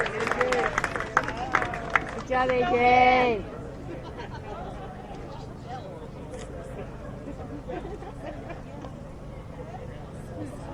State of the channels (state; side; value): identical; both; correlation 1.00